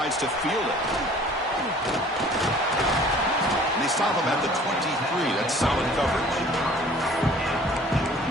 to field it. And they stop him at the 23. That's solid coverage.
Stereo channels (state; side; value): normal; both; correlation 0.51